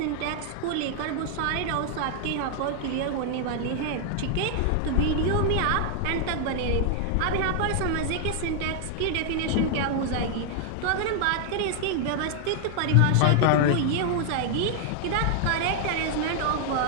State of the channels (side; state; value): both; different; correlation 0.00